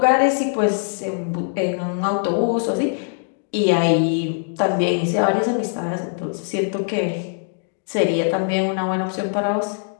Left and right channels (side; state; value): right; silent; digital silence